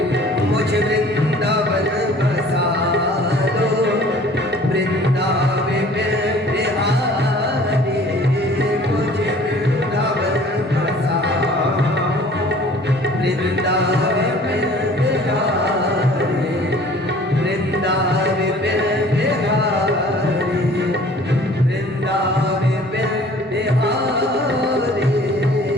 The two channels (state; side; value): normal; both; correlation 0.51